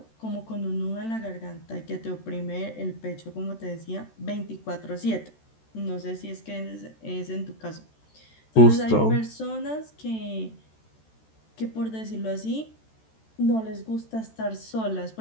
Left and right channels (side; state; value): right; late; 13 ms